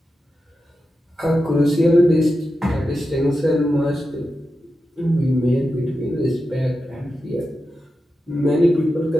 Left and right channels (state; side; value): normal; both; correlation 0.90